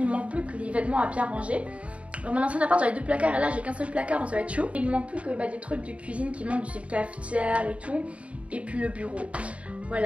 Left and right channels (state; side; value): late; left; 0.064 ms